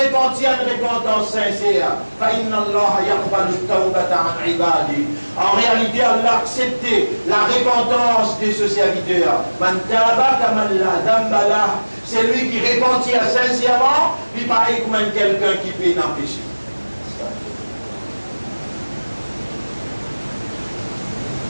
une repentance sincère. En réalité, Allah acceptait la repentance de ce serviteur. C'est lui qui repentit sincèrement, puis pareil comme quelqu'un qui fait un péché.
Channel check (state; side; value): inverted; both; correlation -1.00